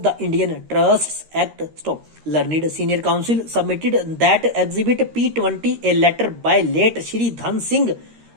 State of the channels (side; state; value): left; late; 13 ms